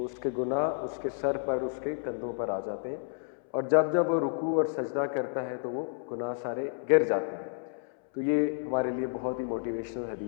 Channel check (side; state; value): right; silent; 57 dB below the other